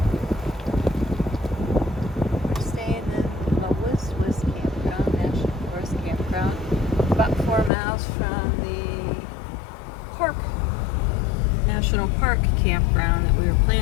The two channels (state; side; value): drops out; right; at 7.7 s